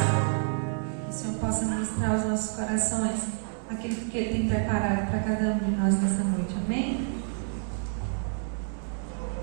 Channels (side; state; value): left; silent; 59 dB below the other